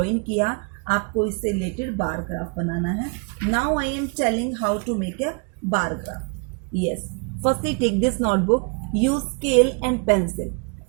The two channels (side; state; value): left; quieter; 35.1 dB